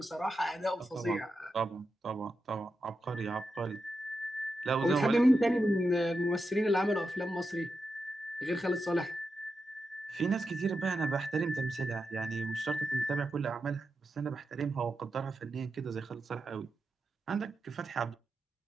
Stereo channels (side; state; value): both; normal; correlation 0.88